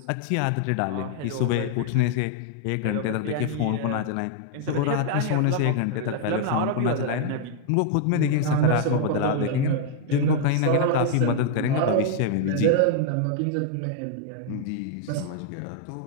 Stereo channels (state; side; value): different; both; correlation -0.01